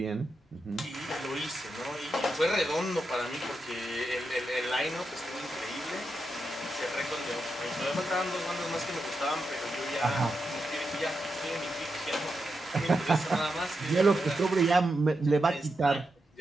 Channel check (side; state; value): both; normal; correlation 0.87